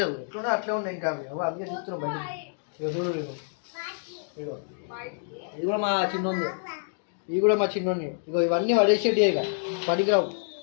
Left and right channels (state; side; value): silent; right; digital silence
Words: లేదు, ఎట్లున్నా అట్లే ఉన్నాయి. ఇంకా అవి అందుకే చూస్తున్నాం బయట. ఇక చూడు, ఇగో ఇది కూడా మా చిన్నోంది, ఇవి కూడా మా చిన్నోని. ఇగో ఇవన్నీ పడేసేటి, ఇక పడికిరావు,